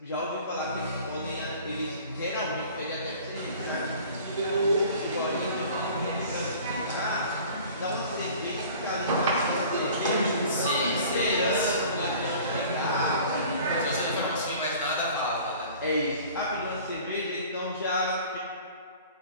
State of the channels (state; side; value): inverted; both; correlation -0.46